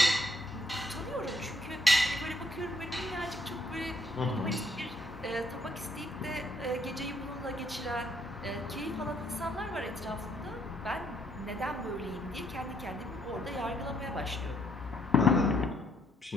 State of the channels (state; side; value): normal; both; correlation 0.69